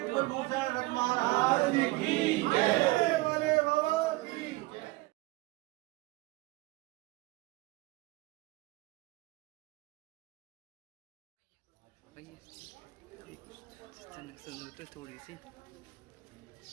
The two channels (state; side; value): quieter; left; 21.3 dB